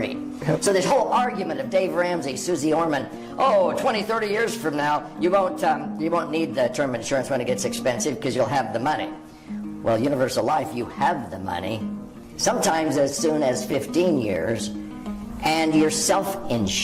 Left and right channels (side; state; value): both; identical; correlation 1.00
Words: So this whole argument of Dave Ramsey, Susie Orman, 20, 30 years from now, you won't need the term insurance when it gets expensive because you'll have the money. Well, Universal Life, you have the money, sometimes as soon as 15 years, and you're